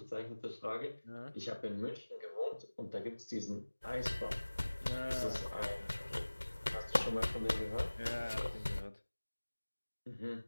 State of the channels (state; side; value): inverted; both; correlation -1.00